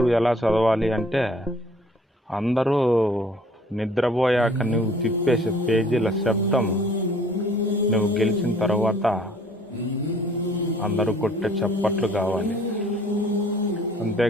ఎలా చదవాలి అంటే, అందరూ నిద్రపోయాక నువ్వు తిప్పేసే పేజీల శబ్దం నువ్వు గెలిచిన తర్వాత అందరూ కొట్టే చప్పట్లు కావాలి.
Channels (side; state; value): both; normal; correlation 0.56